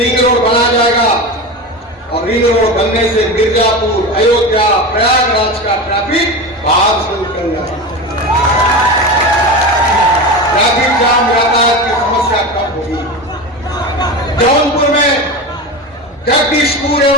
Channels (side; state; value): both; normal; correlation 0.24